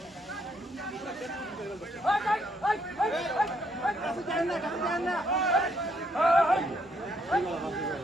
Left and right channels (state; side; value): normal; both; correlation 0.71